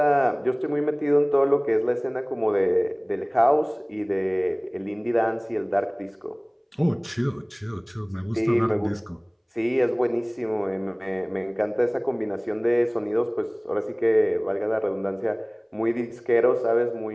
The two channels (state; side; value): identical; both; correlation 1.00